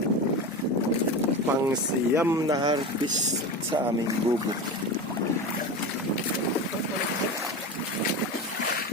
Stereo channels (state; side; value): normal; both; correlation 0.25